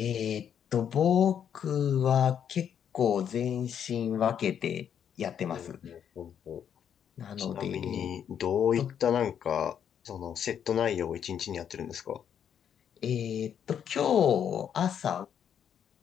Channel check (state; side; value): quieter; right; 8.7 dB